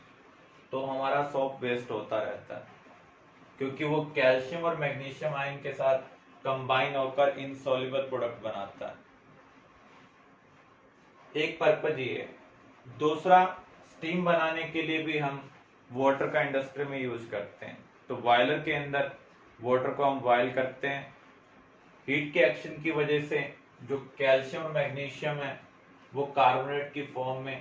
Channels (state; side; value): identical; both; correlation 1.00